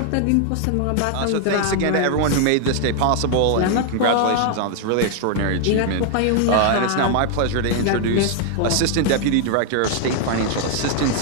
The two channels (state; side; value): different; both; correlation 0.00